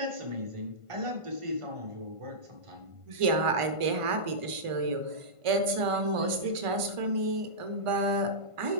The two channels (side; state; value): left; late; 1.5 ms